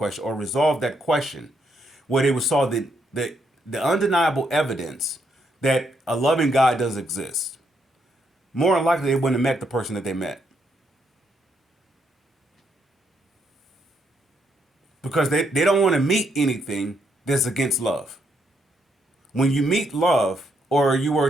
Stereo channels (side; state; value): both; normal; correlation 0.76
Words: or resolved that question, where they would saw the undeniable evidence that a loving God does exist, more than likely they wouldn't have met the person that they met. Because they don't want to meet anything that's against love. When you meet love, or you were